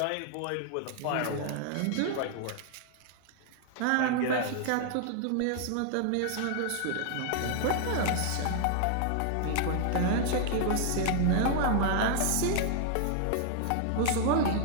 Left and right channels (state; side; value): different; both; correlation 0.00